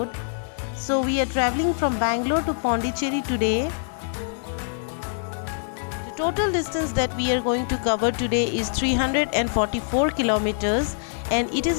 So we are traveling from Bangalore to Pondicherry today. The total distance that we are going to cover today is 344 kilometers and it is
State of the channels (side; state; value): right; silent; 62 dB below the other